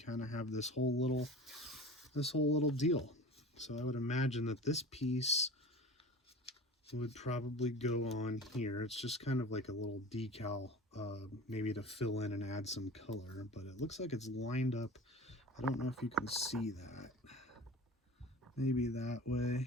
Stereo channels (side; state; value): both; normal; correlation 0.36